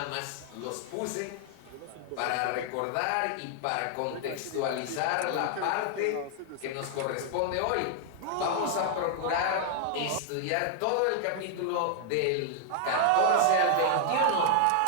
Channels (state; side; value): different; both; correlation -0.01